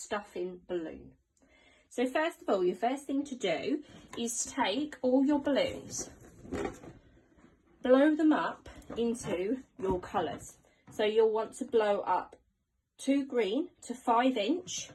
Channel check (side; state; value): both; identical; correlation 1.00